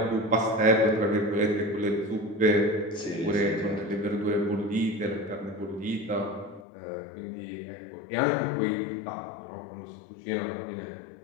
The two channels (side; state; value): right; drops out; at 6.7 s